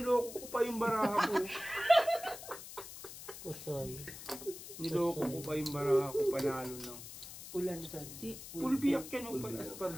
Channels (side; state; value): left; noise; hiss, 13 dB below the sound